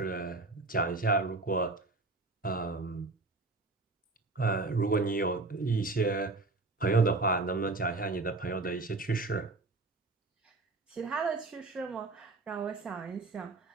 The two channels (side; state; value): left; quieter; 3.4 dB